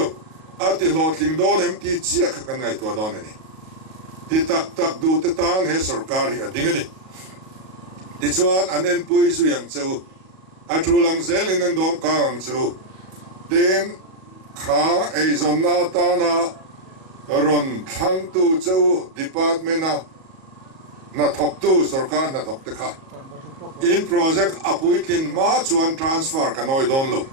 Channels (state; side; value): late; left; 37 ms